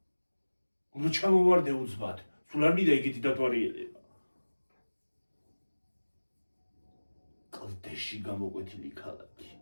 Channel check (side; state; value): both; inverted; correlation -1.00